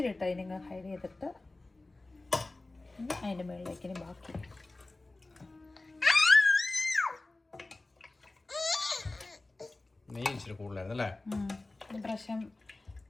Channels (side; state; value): right; quieter; 3.1 dB